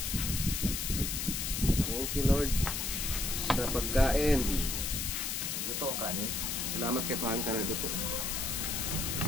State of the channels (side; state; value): left; noise; hiss, 1 dB below the sound